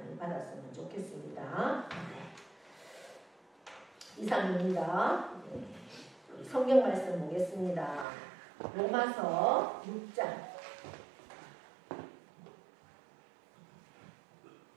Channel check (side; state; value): left; drops out; at 8.1 s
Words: 받았으면 좋겠습니다. 이상입니다. 성경 말씀 보겠습니다. 로마서 6장